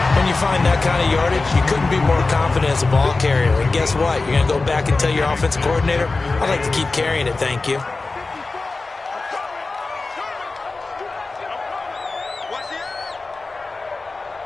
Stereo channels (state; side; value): quieter; right; 3.6 dB